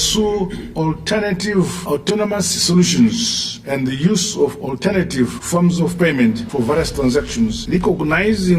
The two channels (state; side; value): identical; both; correlation 1.00